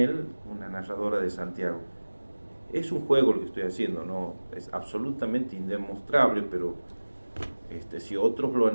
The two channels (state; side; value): inverted; both; correlation -1.00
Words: una narradora de Santiago. Es un juego lo que estoy haciendo, no es absolutamente indemostrable, pero si otros lo han